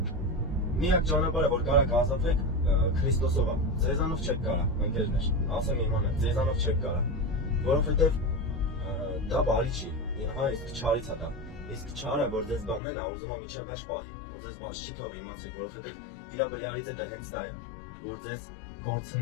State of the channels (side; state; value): right; drops out; at 12.8 s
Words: միակ ճանապարհը, որ կարաք ազատվեք, Քրիստոսով է։ Ձեզանով չեք կարա, ընկերներ, ասեմ իմանա, ձեզանով չեք կարա, որովհետեւ դա բարի չի, իսկ չարից է դա։ Իսկ չարը, որ ձեզ բանն է, ուզում է միջև վերջ պահի, որ ձեզ բաց չի թող իմացեք, որովհետև իր բրյարից է դա հենց դա է, որ ձեզ